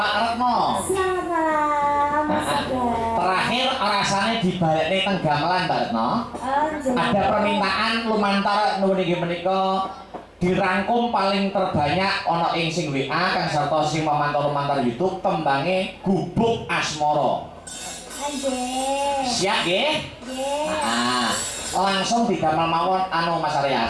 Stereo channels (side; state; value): both; identical; correlation 1.00